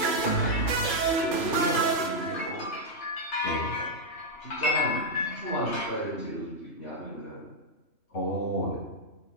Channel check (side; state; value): right; late; 3.1 ms